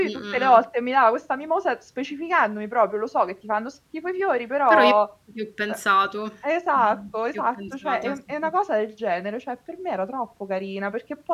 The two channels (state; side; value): identical; both; correlation 1.00